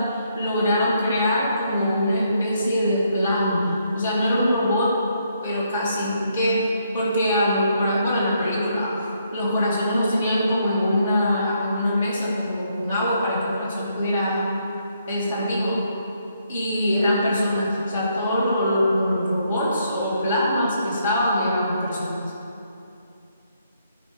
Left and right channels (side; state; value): both; inverted; correlation -0.74